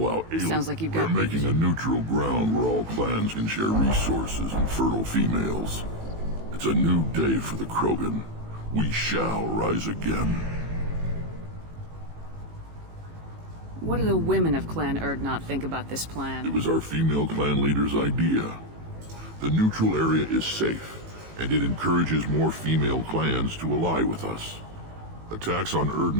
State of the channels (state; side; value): late; left; 18 ms